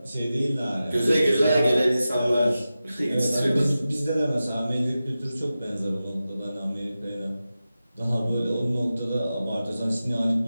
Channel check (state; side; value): inverted; both; correlation -0.93